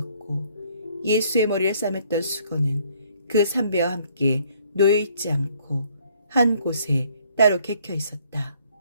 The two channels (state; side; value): inverted; both; correlation -0.63